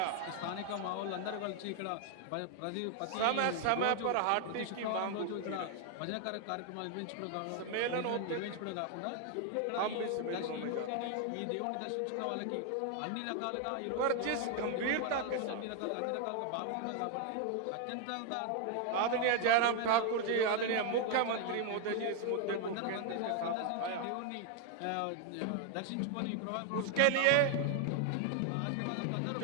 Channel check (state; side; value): different; both; correlation 0.00